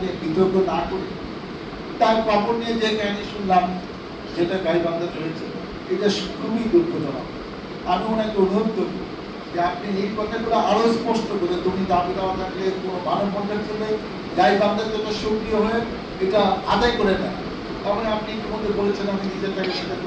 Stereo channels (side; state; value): both; identical; correlation 1.00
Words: বিতর্ক না করি। তার কাপড় নিয়ে যে কাহিনী শুনলাম, যেটা গাইবান্ধায় হয়েছে, এটা খুবই দুঃখজনক। আমি ওনাকে অনুরোধ করব যে আপনি এই কথাগুলো আরো স্পষ্ট করে, তুমি দাবি দেওয়া থাকলে কোনো মানববন্ধন করলে গাইবান্ধার জন্য সক্রিয় হয়ে এটা আদায় করে নেয়। তারপরে আপনি ইতিমধ্যে বলেছেন আমি নিজের টাকা সেটা